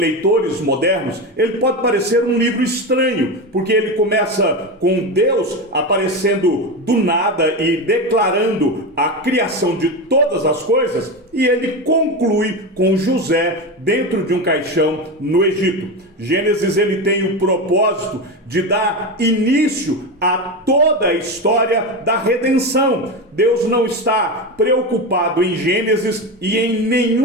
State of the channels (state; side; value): normal; both; correlation 0.18